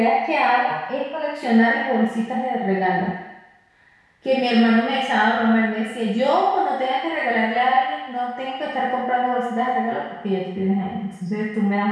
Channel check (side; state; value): both; identical; correlation 1.00